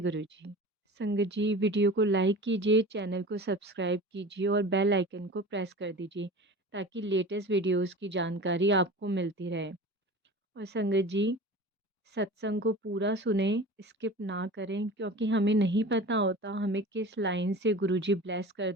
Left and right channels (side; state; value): both; normal; correlation 0.35